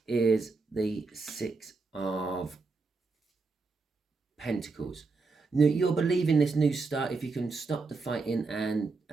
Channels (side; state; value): left; quieter; 4.1 dB